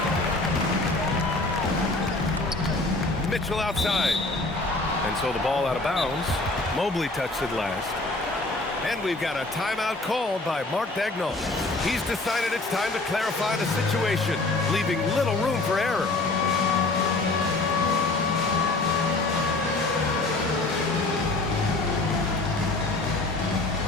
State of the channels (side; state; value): right; quieter; 3.1 dB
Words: Mitchell outside. And so the ball out of bounds. Mobley touched it last. And we've got a timeout called by Mark Daigneault. He's decided it's time to clarify the situation, leaving little room for error.